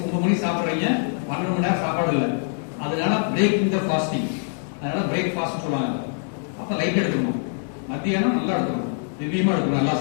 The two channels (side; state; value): right; silent; 61 dB below the other